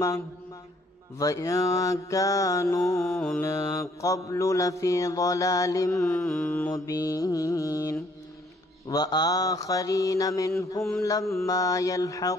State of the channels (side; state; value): both; normal; correlation 0.64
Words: وإن كانوا من قبل لفي ضلال مبين وآخرين منهم لما